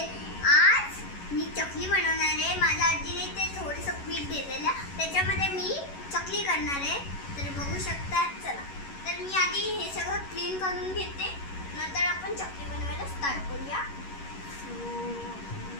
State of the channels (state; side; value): late; right; 11 ms